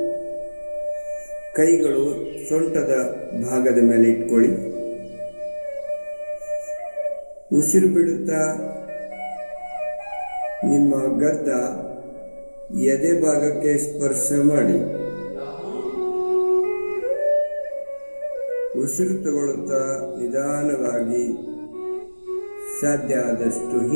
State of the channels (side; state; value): both; inverted; correlation -1.00